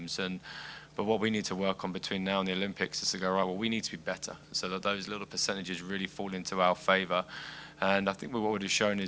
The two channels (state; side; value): identical; both; correlation 1.00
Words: But what we need to work on between now and the Olympics is to go, right, well, we need to be better, so that those little percentages really fall into our favour. And I think what we've shown